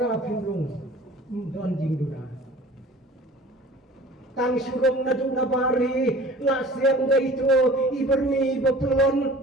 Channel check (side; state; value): both; normal; correlation 0.44